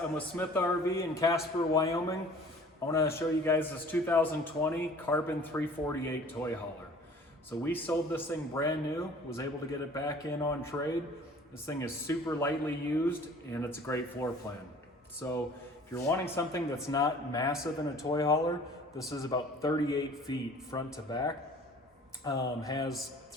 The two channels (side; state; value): both; normal; correlation 0.49